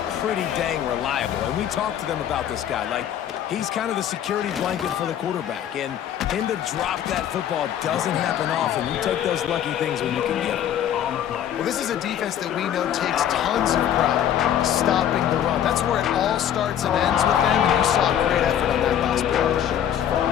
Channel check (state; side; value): quieter; right; 10.1 dB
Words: pretty dang reliable. And we talked to them about this guy. Like, he's kind of the security blanket for the quarterback. And him to drop that football doesn't happen often. You take those lucky things when you can get them. Well, this is a defense that we know takes tons of pride stopping the run. That's where it all starts and ends with them, and you saw a great effort on that last play.